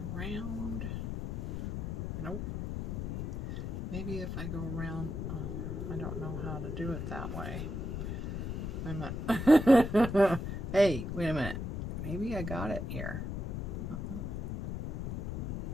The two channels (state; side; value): noise; left; rumble, 4 dB below the sound